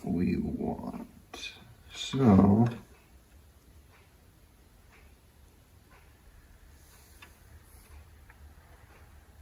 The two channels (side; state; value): both; identical; correlation 1.00